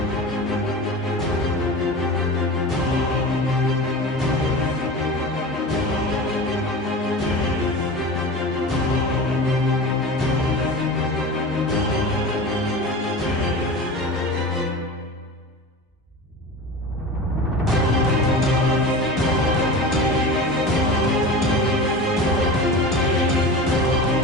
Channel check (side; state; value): both; normal; correlation 0.31